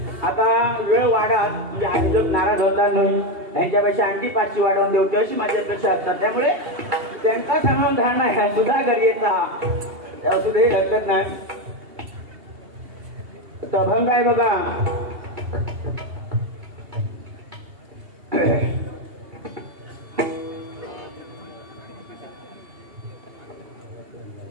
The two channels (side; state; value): left; late; 2.8 ms